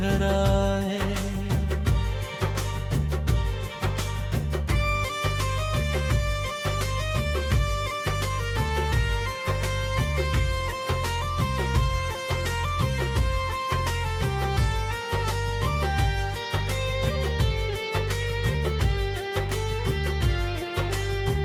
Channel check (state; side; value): identical; both; correlation 1.00